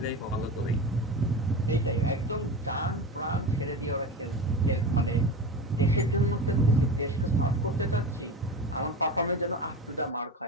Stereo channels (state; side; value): normal; both; correlation 0.27